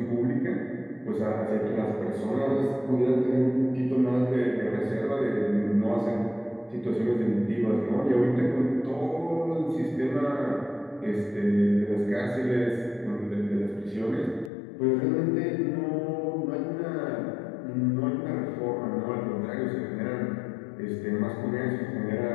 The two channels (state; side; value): drops out; right; at 14.5 s